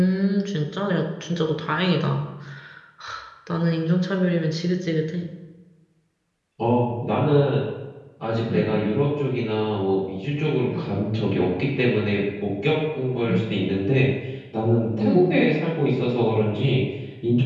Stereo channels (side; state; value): both; identical; correlation 1.00